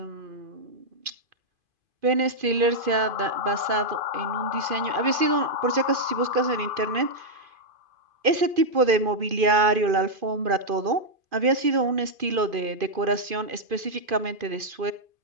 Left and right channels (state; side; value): late; left; 2.5 ms